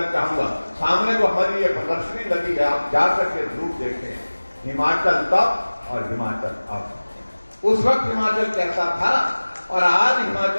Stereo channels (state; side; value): inverted; both; correlation -1.00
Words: चाहूंगा, सामने जो हमारी ये प्रदर्शनी लगी है, आप जाकर के जरूर देखें, हिमाचल तब और हिमाचल अब। उस वक्त हिमाचल कैसा था और आज